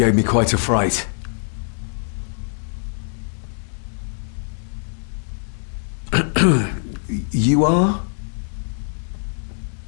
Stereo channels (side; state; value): right; silent; 61 dB below the other